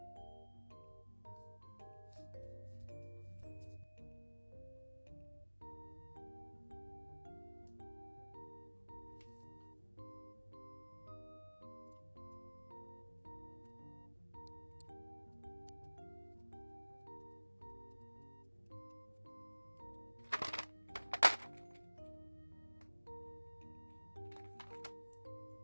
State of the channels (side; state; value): both; inverted; correlation -1.00